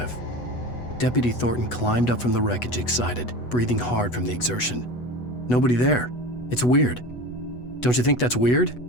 Deputy Thornton climbed up from the wreckage excited, breathing hard from the exertion. Nobody there. It's weird. Don't you think that's weird?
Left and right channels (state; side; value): late; right; 8.1 ms